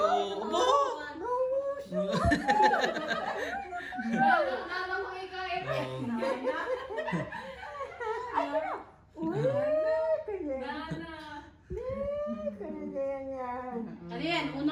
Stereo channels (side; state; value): both; identical; correlation 1.00